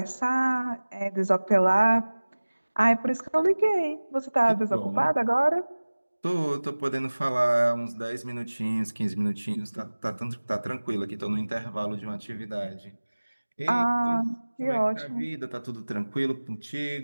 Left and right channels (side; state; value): both; inverted; correlation -1.00